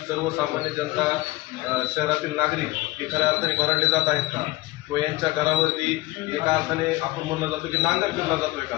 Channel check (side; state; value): right; quieter; 19.7 dB